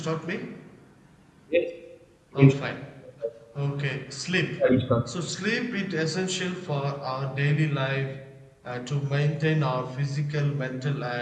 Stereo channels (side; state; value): both; identical; correlation 1.00